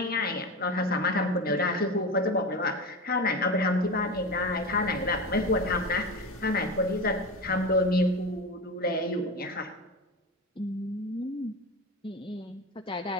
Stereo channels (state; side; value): normal; both; correlation 0.24